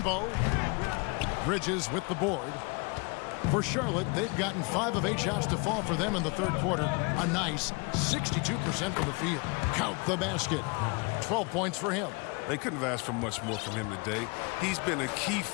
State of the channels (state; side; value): quieter; right; 30.3 dB